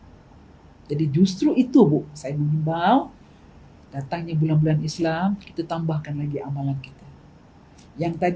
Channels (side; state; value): both; identical; correlation 1.00